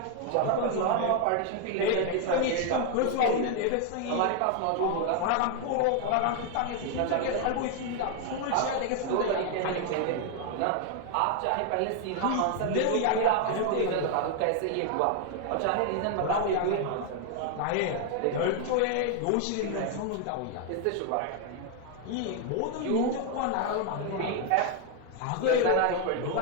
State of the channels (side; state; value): both; different; correlation 0.00